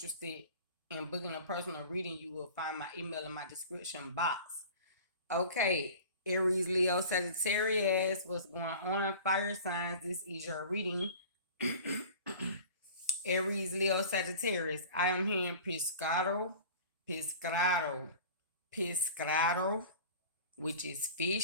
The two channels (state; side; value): inverted; both; correlation -0.40